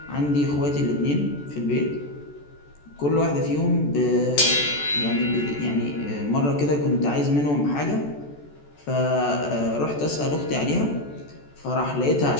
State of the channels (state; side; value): late; right; 14 ms